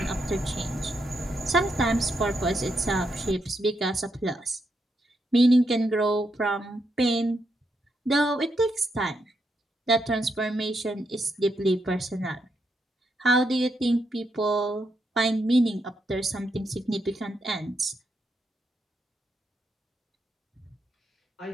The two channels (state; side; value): normal; both; correlation 0.81